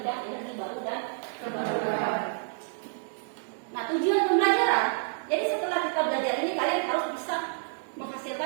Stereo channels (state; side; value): silent; left; digital silence